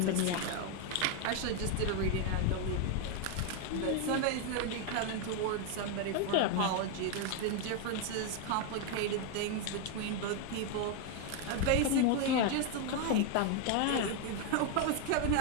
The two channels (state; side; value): different; both; correlation 0.01